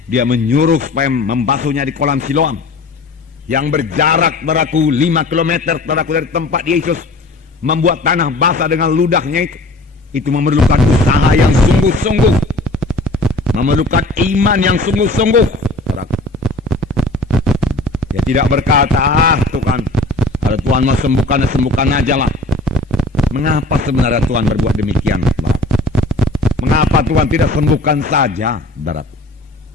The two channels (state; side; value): quieter; right; 3.0 dB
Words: dia menyuruh supaya membasuhnya di kolam Siloam yang berjarak, saudaraku, 5 km, saudaraku, dari tempat Yesus membuat tanah basah dengan ludahnya itu. Itu memerlukan usaha yang sungguh-sungguh, memerlukan iman yang sungguh-sungguh, saudaraku. Dia tidak berkata, Tuhan, kalau Tuhan mau sembuhkan, sembuhkan aja lah. Mengapa sebenarnya Tuhan berbuat demikian? Mengapa Tuhan tidak sembuhkan saja, saudaraku?